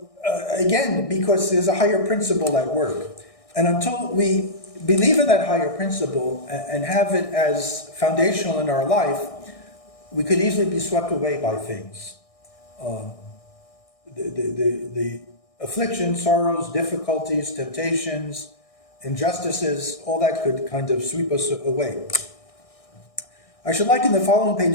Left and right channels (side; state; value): right; late; 1.6 ms